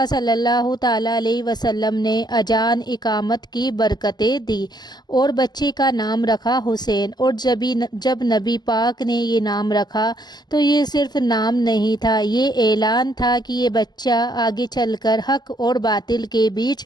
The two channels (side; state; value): right; late; 0.20 ms